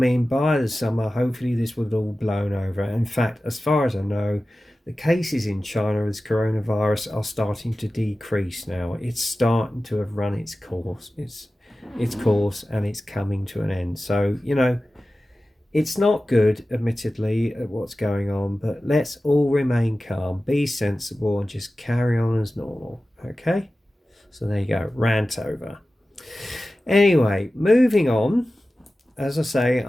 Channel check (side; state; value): both; normal; correlation 0.95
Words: by the summer, hopefully this would have all blown over. In fact, as far as I know, the cases in China with coronavirus are starting to decrease now. It's starting to have run its course. Its course, and it's coming to an end. So, it's not good, admittedly, at what's going on, but let's all remain calm, be sensible, and just carry on as normal. Okay? So there you go, rant over. Anyway, moving on. As I say,